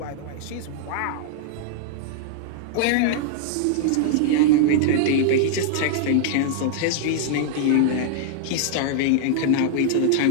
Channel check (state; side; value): different; both; correlation -0.01